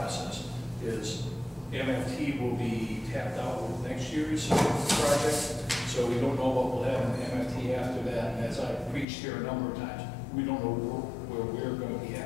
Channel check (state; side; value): drops out; right; at 9.1 s